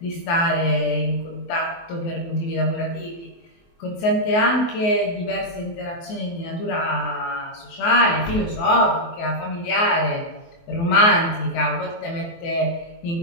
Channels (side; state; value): right; late; 24 ms